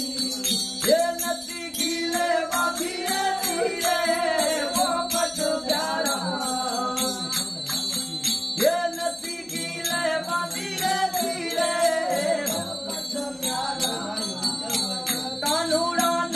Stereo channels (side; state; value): both; identical; correlation 1.00